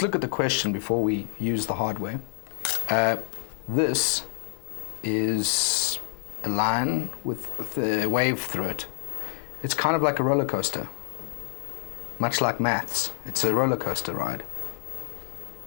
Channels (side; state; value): right; silent; 59 dB below the other